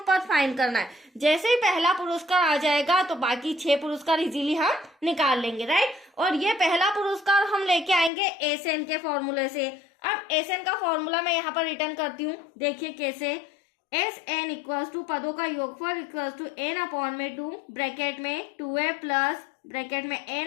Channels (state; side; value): drops out; right; at 8.1 s